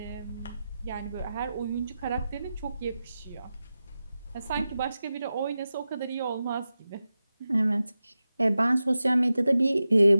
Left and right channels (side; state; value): both; inverted; correlation -0.93